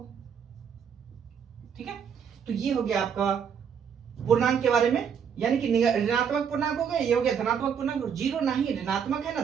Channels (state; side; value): quieter; left; 7.3 dB